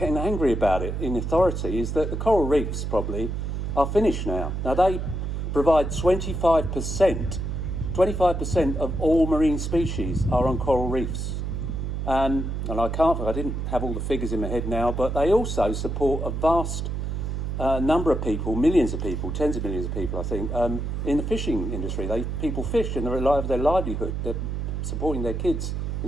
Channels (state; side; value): noise; right; hum, 3 dB below the sound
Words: angry about it in authority, is that the coral reefs probably are finished now. Now they provide 25% of all marine species are on coral reefs. And I didn't have all the figures in my head now, but they also support a vast number of people, millions of people, tens of millions of people, I think, in the fishing industry. People fish and they rely on their livelihood. They're supporting their kids